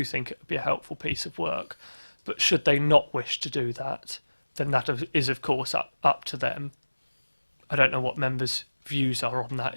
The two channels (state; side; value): inverted; both; correlation -1.00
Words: think it would be a helpful piece of work. But should they not wish to do that, then that is of course up to them. I don't know what members' views are on